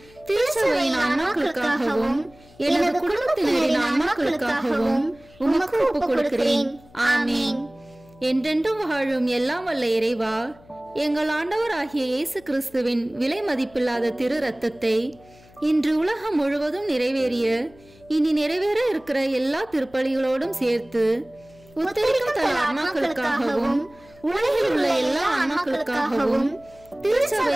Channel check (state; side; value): noise; left; hum, 26 dB below the sound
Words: திருச்சபையின் ஆன்மாக்களுக்காகவும் எனது குடும்பத்தினரின் ஆன்மாக்களுக்காகவும் உமக்கு ஒப்பு கொடுக்கிறேன். ஆமீன். என்றென்றும் வாழும் எல்லாம் வல்ல இறைவா, எங்கள் ஆண்டவராகிய இயேசு கிறிஸ்துவின் விலை மதிப்பில்லாத திரு ரத்தத்தை இன்று உலகம் முழுவதும் நிறைவேறிய இனி நிறைவேற இருக்கிற எல்லா திருப்பலிகளோடும் சேர்த்து உத்தரிக்கும் தல ஆன்மாக்களுக்காகவும் உலகில் உள்ள எல்லா ஆன்மாக்களுக்காகவும்